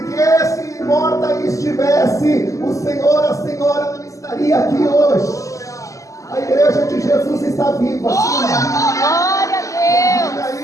se morta estivesse, o Senhor, a Senhora não estaria aqui hoje. A igreja de Jesus está viva. Glória a Deus. Vida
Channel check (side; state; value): right; late; 0.16 ms